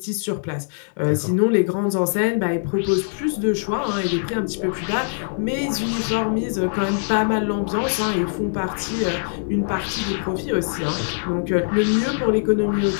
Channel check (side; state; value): right; silent; digital silence